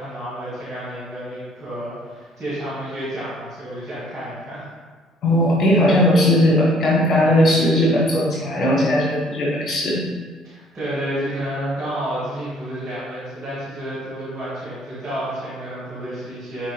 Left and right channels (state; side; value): normal; both; correlation 0.60